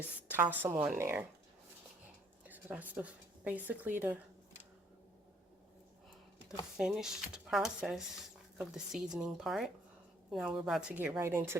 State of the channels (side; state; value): both; normal; correlation 0.64